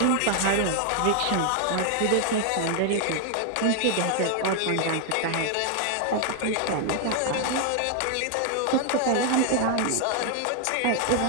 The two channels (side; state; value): both; different; correlation 0.01